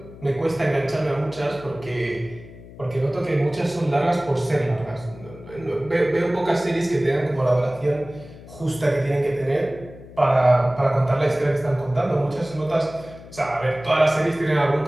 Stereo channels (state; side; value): noise; left; hum, 18 dB below the sound